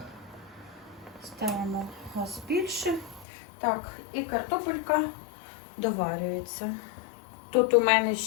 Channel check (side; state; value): right; drops out; at 3.2 s